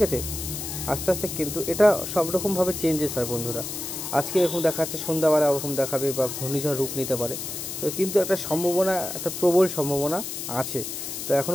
আছে। আস্তে আস্তে কিন্তু এটা সব রকমভাবে চেঞ্জেস হয় বন্ধুরা। আজকে এরকম দেখাচ্ছে, সন্ধ্যাবেলা ওরকম দেখাবে বা ঘূর্ণিঝড় রূপ নিতে পারে। তো কিন্তু একটা সম্ভাবনা, একটা প্রবল সম্ভাবনা আছে। তো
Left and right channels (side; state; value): left; noise; hiss, 6 dB below the sound